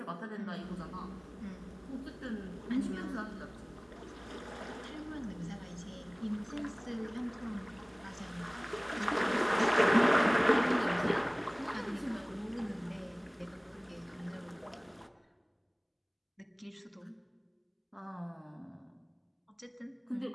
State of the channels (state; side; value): identical; both; correlation 1.00